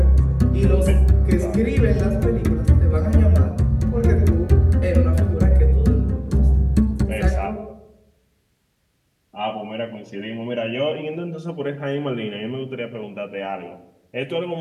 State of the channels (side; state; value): both; identical; correlation 1.00